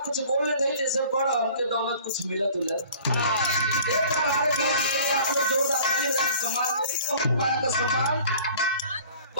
कुछ बोलने दें जैसे बड़ा हमके दौलत कुछ मिलत उलत। हमारे जोरदार सम्मान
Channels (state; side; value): inverted; both; correlation -0.49